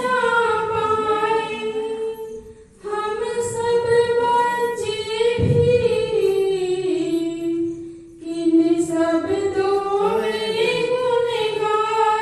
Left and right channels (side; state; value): both; identical; correlation 1.00